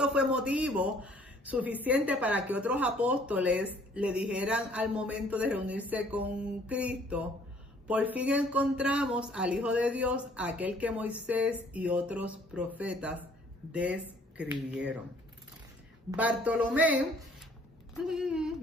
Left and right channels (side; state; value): both; normal; correlation 0.59